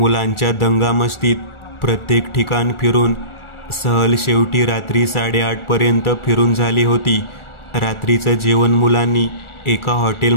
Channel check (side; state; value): right; late; 1.4 ms